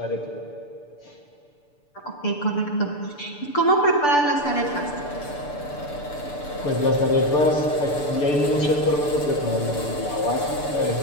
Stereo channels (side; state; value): right; late; 6.8 ms